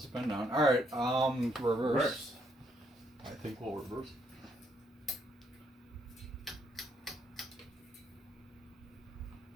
down. All right, reverse. I think we'll reverse.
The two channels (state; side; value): normal; both; correlation 0.72